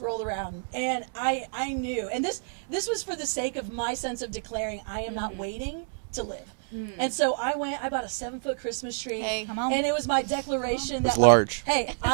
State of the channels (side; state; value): left; silent; digital silence